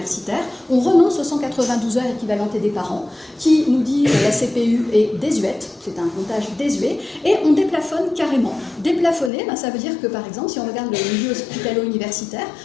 On renonce aux 192 heures équivalentées des parents, qui nous dit la CPU est désuète, c'est un comptage désuet, et on déplafonne carrément. Déplafonner, ça veut dire que, par exemple, si on regarde le milieu hospitalo-universitaire,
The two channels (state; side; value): drops out; right; at 9.3 s